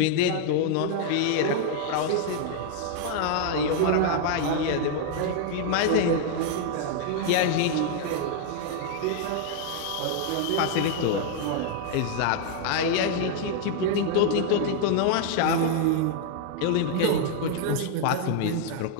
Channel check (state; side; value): different; both; correlation -0.01